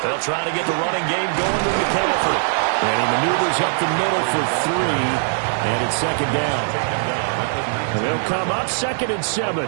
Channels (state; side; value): silent; left; digital silence